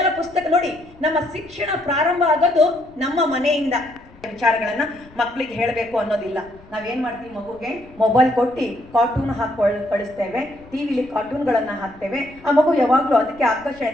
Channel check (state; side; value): noise; left; rumble, 24 dB below the sound